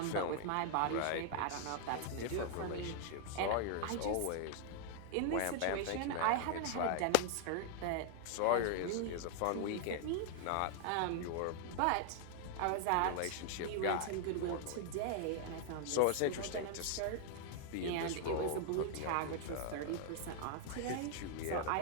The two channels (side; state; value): both; different; correlation 0.00